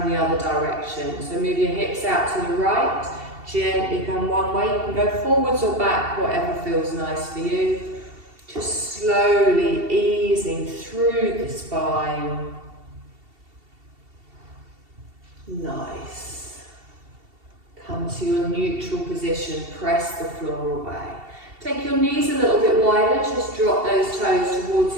in the other direction. So move your hips out to the right. Gently come one way. You can go forwards or back, whatever feels nice for you. Just slowly easing through the spine. Nice. Come to your neutral position. Press the floor away. Take your knees a little bit wider. Just drop those toes towards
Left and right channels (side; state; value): left; late; 2.7 ms